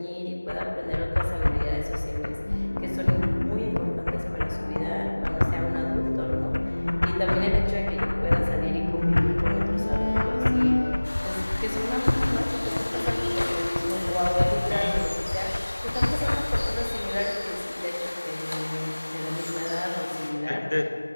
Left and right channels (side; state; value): both; inverted; correlation -1.00